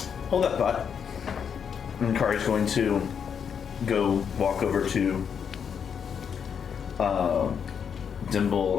Hold that thought. And Kari's going to go walk over to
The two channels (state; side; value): quieter; right; 7.3 dB